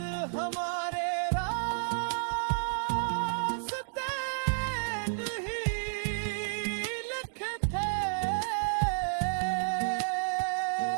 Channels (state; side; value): silent; left; digital silence